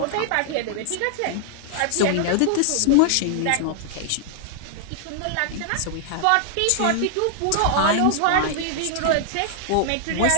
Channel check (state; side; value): different; both; correlation 0.00